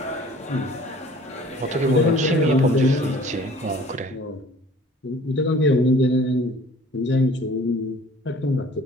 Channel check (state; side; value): normal; both; correlation 0.50